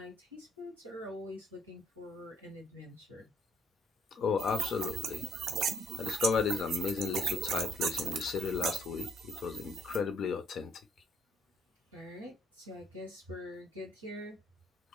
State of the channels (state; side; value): normal; both; correlation 0.65